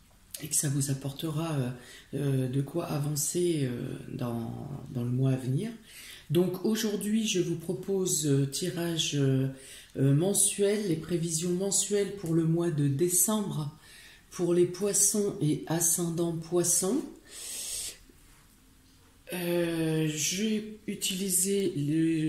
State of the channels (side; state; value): both; identical; correlation 1.00